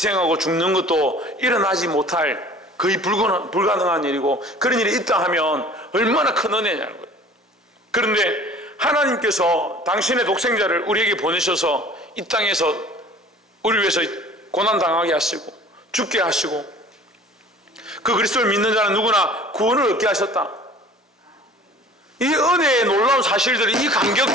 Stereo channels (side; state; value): both; normal; correlation 0.47